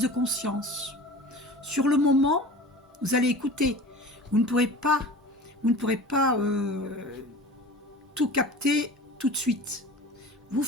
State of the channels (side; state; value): both; normal; correlation 0.38